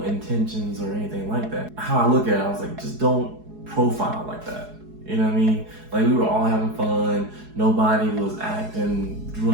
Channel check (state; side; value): late; left; 4.7 ms